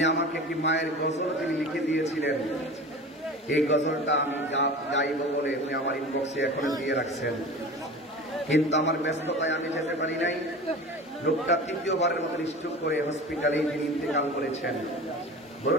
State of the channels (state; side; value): normal; both; correlation 0.35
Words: আমাকে একটি মায়ের গজল তিনি লিখে দিয়েছিলেন। এই গজলটা আমি গাইব বলে উনি আমার ইনবক্সে এখনো দিয়ে রাখছেন, কিন্তু আমার ব্যস্ততায় আমি যেতে পারি নাই। লোকটা 3য়বারের মতো স্ট্রোক করে হসপিটালে যিনি ইন্তেকাল করেছেন।